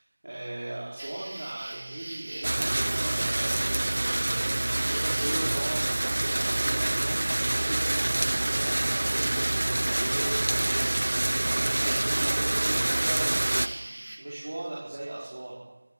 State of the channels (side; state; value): both; inverted; correlation -1.00